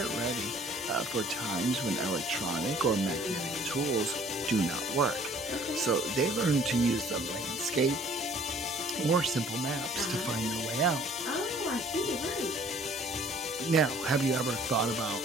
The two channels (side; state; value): both; normal; correlation 0.55